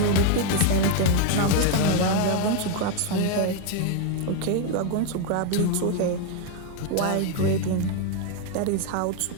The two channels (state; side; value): different; both; correlation 0.01